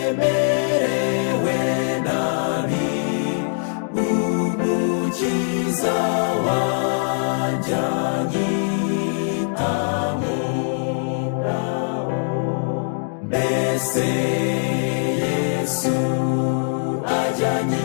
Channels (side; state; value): right; silent; 64 dB below the other